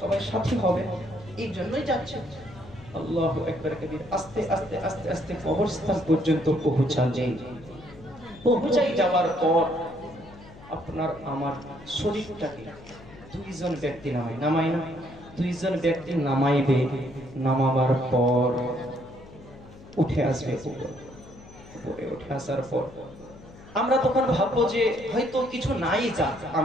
সবাই সাথী হবে, এই জন্যই যাচ্ছে। আল্লাহু আকবার কবীর। আস্তে আস্তে আস্তে আস্তে কবরস্থান পর্যন্ত পৌঁছাই যাওয়ার পর আপনার আমার শরীরটাকে দুইজন ব্যক্তি নামায় না, দুইজন ব্যক্তি নামাইবে, নামাবার পর উঠে আসবে উপরে উঠে আসার পর আমরা তখন ভাববো যে হয়তো কিছু নাই যা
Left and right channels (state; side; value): noise; left; hum, 20 dB below the sound